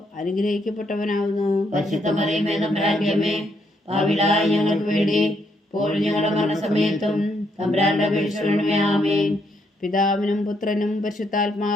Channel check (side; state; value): both; normal; correlation 0.74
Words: അനുഗ്രഹിക്കപ്പെട്ടവനാവുന്നു. പരിശുദ്ധ മറിയമേ തമ്പുരാന്റെ അമ്മേ, പാപികളായ ഞങ്ങൾക്ക് വേണ്ടി ഇപ്പോഴും ഞങ്ങളുടെ മരണസമയത്തും തമ്പുരാന്റെ അപേക്ഷകളെ ആമേൻ. പിതാവിനും പുത്രനും